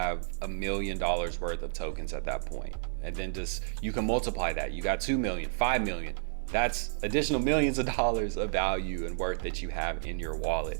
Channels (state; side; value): silent; left; digital silence